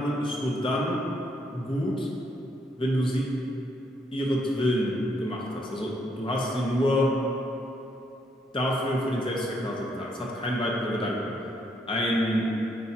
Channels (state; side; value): normal; both; correlation 0.73